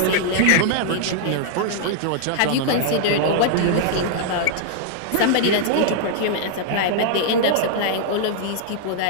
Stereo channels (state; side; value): different; both; correlation -0.01